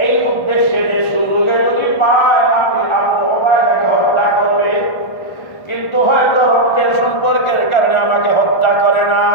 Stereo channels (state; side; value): late; right; 1.4 ms